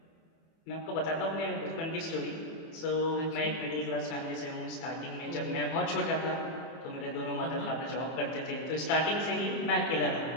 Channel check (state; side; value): late; right; 24 ms